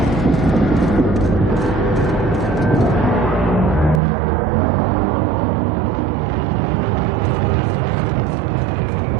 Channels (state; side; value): drops out; left; at 4.0 s